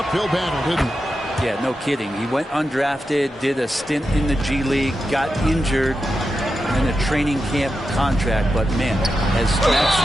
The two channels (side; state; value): both; normal; correlation 0.89